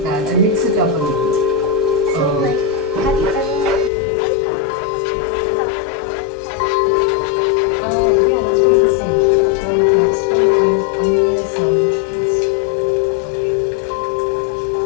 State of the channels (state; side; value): drops out; right; at 3.9 s